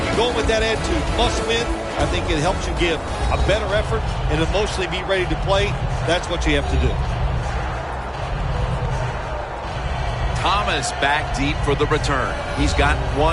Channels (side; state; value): both; identical; correlation 1.00